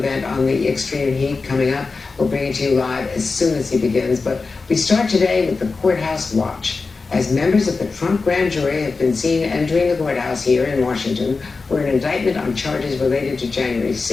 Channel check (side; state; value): right; quieter; 4.2 dB